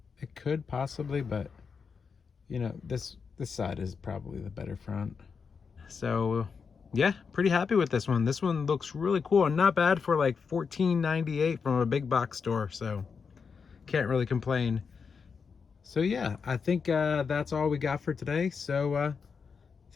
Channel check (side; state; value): right; quieter; 5.7 dB